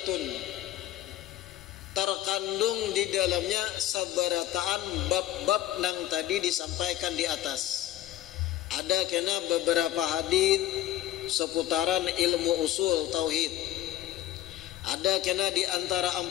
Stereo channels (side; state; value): right; quieter; 13.4 dB